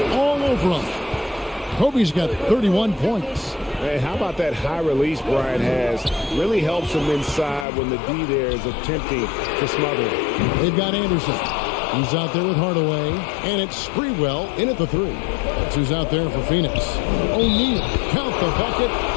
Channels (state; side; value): drops out; right; at 7.7 s